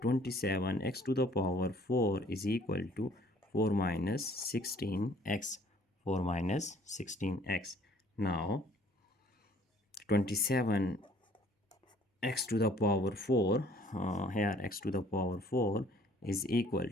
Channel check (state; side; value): normal; both; correlation 0.57